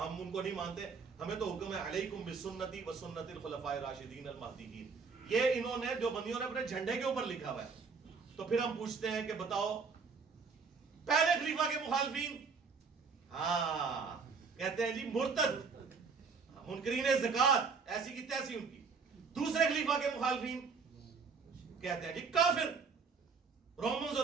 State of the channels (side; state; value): left; quieter; 5.1 dB